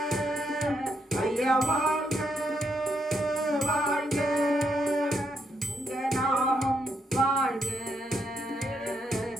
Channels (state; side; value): normal; both; correlation 0.78